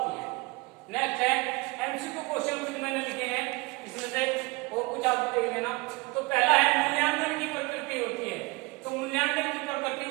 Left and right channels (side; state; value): left; quieter; 26.0 dB